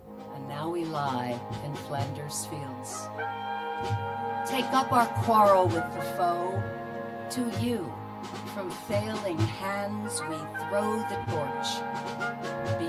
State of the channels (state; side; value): identical; both; correlation 1.00